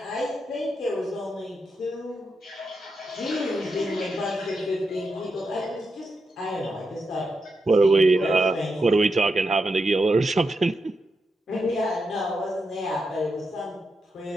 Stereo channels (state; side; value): normal; both; correlation 0.86